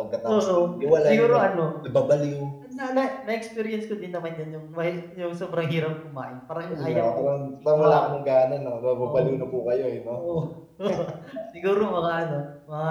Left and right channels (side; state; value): both; identical; correlation 1.00